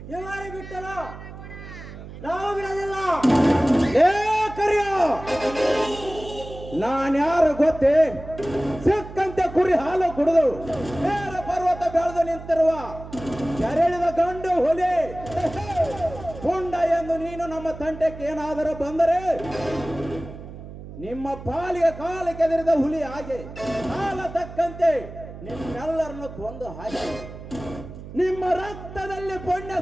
ಇವಾರಿ ಬಿಟ್ಟಲ್ಲ ನಾವು ಬಿಡೋದಿಲ್ಲ. ಏ ಕರಿಯೋ, ನಾನ್ಯಾರು ಗೊತ್ತೇ? ಸಿಕ್ಕಂತೆ ಕುರಿ ಹಾಲು ಕುಡಿದು ನೇರ ಪರ್ವತ ಬೆಳೆದು ನಿಂತಿರುವ ಕೆರಳಿದ ಗಂಡು ಹುಲಿ ಪುಂಡ ಎಂದು ನೀನು ನಮ್ಮ ತಂಟೆಗೆ ಏನಾದರೂ ಬಂದರೆ ನಿಮ್ಮ ಪಾಲಿಗೆ ಕಾಲು ಕೆದರಿದ ಹುಲಿ ಹಾಗೆ ಕಾಲ ತಕ್ಕಂತೆ ನಿಮ್ಮೆಲ್ಲರನ್ನು ಕೊಂದು ಹಾಕಿ ನಿಮ್ಮ ರಕ್ತದಲ್ಲಿ ಪುಣ್ಯ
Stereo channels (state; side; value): noise; right; hum, 13 dB below the sound